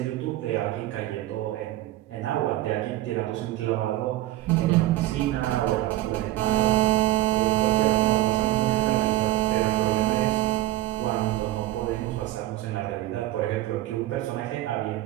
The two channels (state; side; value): quieter; left; 15.9 dB